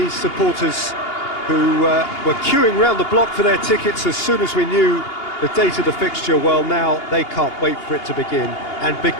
supporters who were queuing round the block for their tickets as soon as we knew the date of the fixture, well, now they can't wait for it to begin. And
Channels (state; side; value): late; right; 2.8 ms